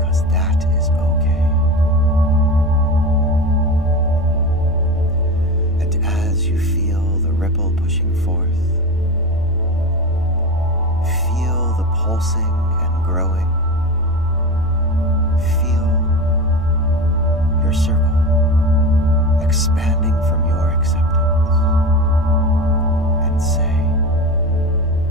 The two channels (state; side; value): normal; both; correlation 0.26